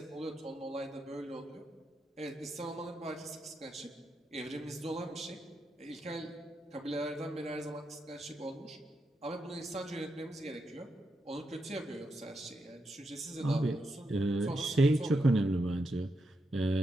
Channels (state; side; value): normal; both; correlation 0.84